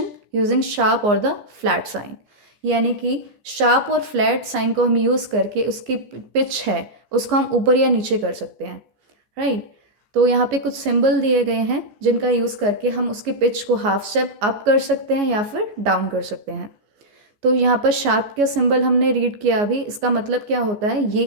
using sharp और द फ्लैट साइन, यानी कि शार्प और फ्लैट साइन को हम यूज़ करके उसकी पिच है उसको हम ऊपर या नीचे कर सकते हैं. राइट. तो यहाँ पे कुछ सिंबल दिए गए हैं जिनका यूज़ करके हम उसकी पिच को हाफ स्टेप अप कर सकते हैं या फिर डाउन कर सकते हैं. तो यहाँ पर शार्प का सिंबल हमने रीड किया अभी. इसका मतलब क्या होता है, ये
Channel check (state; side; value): late; left; 14 ms